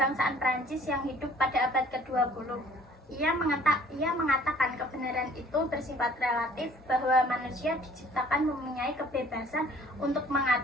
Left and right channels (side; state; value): both; normal; correlation 0.54